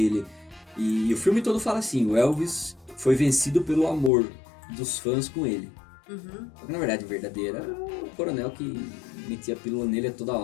E o filme todo fala assim, o Elvis foi vencido pelo amor dos fãs com ele. Uhum. Só que, na verdade, verdadeira era o coronel que metia a pílula nele a toda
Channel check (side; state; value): right; drops out; at 4.1 s